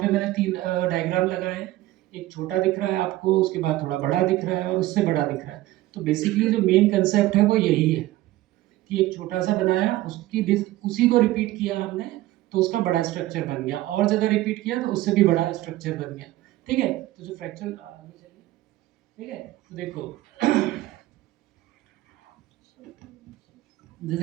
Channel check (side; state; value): left; quieter; 16.5 dB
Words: मैंने 3 डायग्राम लगाए हैं। एक छोटा दिख रहा है आपको, उसके बाद थोड़ा बड़ा दिख रहा है और उससे बड़ा दिख रहा है। तो बेसिकली जो मेन कंसेप्ट है वो यही है कि एक छोटा सा बनाया, उसी को रिपीट किया हमने, तो उसका बड़ा स्ट्रक्चर बन गया, और ज़्यादा रिपीट किया तो उससे भी बड़ा स्ट्रक्चर बन गया। ठीक है। तो जो फ्रैक्चर आगे चलिए। ठीक है। तो देखो